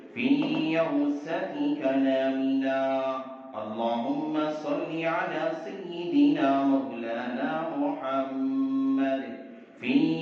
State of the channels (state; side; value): identical; both; correlation 1.00